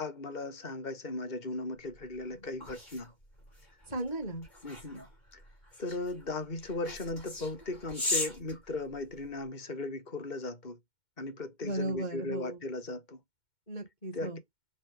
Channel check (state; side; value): late; right; 2.1 ms